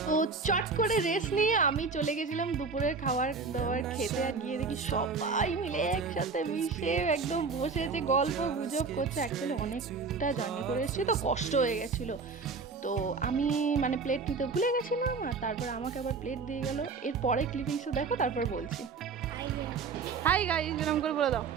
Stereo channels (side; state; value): left; quieter; 4.7 dB